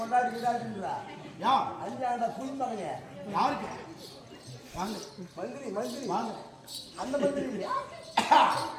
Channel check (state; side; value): identical; both; correlation 1.00